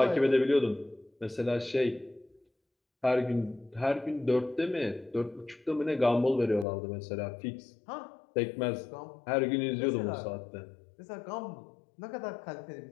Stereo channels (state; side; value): drops out; right; at 6.7 s